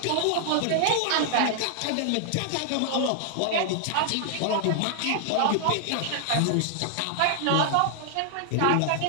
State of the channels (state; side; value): different; both; correlation 0.00